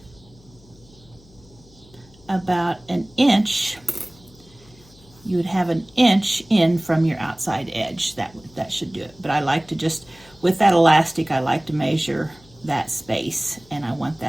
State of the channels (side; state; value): left; noise; hum, 26 dB below the sound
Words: about an inch. You would have an inch in from your outside edge. That should do it. But I like to just, with that elastic, I like to measure that space, and I want